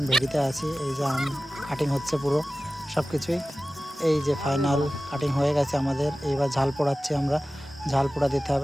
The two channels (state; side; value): normal; both; correlation 0.96